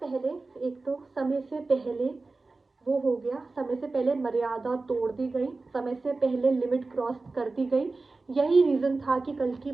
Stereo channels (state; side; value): quieter; left; 3.6 dB